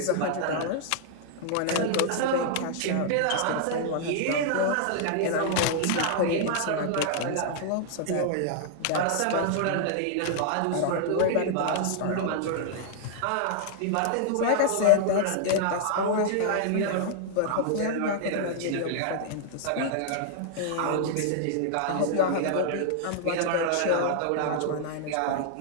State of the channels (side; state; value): both; different; correlation 0.00